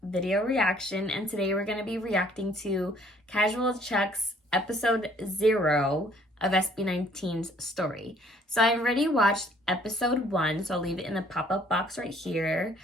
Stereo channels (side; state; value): both; normal; correlation 0.60